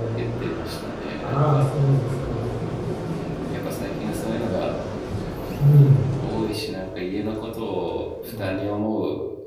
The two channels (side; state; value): both; identical; correlation 1.00